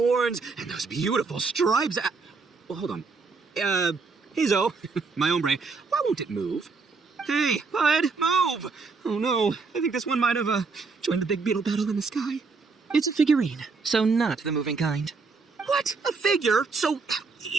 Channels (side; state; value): left; quieter; 4.5 dB